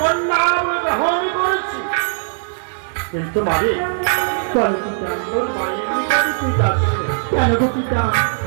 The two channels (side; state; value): left; silent; digital silence